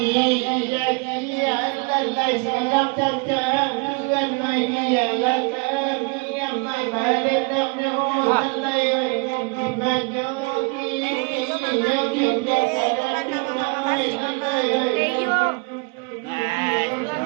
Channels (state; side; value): quieter; left; 29.9 dB